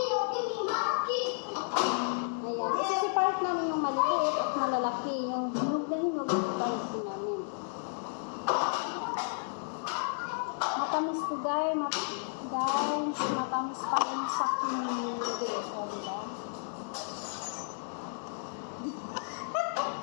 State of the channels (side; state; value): right; silent; digital silence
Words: Ayan. Isa si part namin yung maliit at malalaki. Yung hinog na hinog yung part namin. Matamis to guys. Guys, matamis pa yung sa kinili. O, diba?